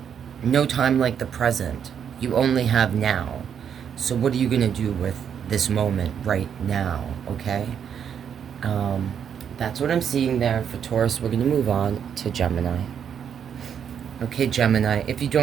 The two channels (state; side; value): quieter; left; 8.1 dB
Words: no time like the present. You only have now. So what are you gonna do with this moment right now, okay? That's what I'm seeing there for Taurus. We're gonna move on to Gemini. Okay, Gemini, if you